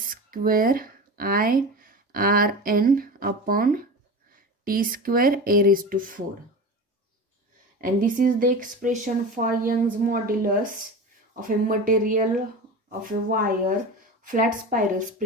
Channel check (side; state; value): both; normal; correlation 0.29